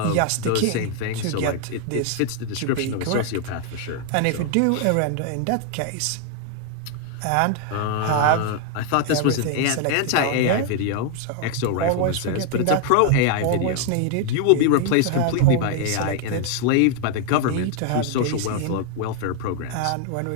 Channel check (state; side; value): different; both; correlation 0.00